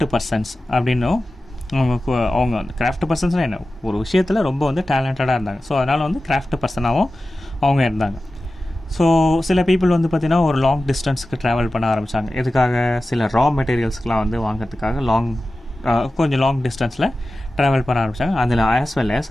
பர்சன்ஸ் அப்படின்னும் அவங்க வந்து கிராஃப்ட் பர்சன்ஸ்னால் என்ன, ஒரு விஷயத்தில் ரொம்ப வந்து டேலண்டடாக இருந்தாங்க. ஸோ அதனால் வந்து கிராஃப்ட் பர்சனாகவும் அவங்க இருந்தாங்க. ஸோ சில பீப்புள் வந்து பார்த்திங்கன்னா ஒரு லாங் டிஸ்டன்ஸுக்கு ட்ராவல் பண்ண ஆரம்பித்தாங்க. எதுக்காக? சில ரா மெட்டீரியல்ஸ்க்கெலாம் வந்து வாங்கிறதுக்காக கொஞ்சம் லாங் டிஸ்டன்ஸில் ட்ராவல் பண்ண ஆரம்பித்தாங்க. அதில் ஆஸ் வெல் அஸ்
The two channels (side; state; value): both; normal; correlation 0.95